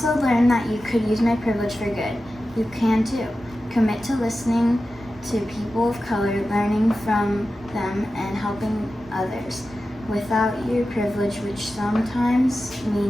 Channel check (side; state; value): both; normal; correlation 0.93